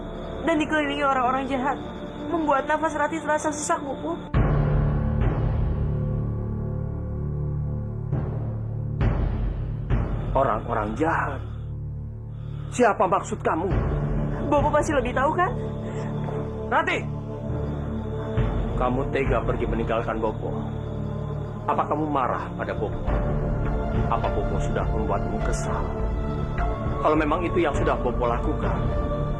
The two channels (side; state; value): both; identical; correlation 1.00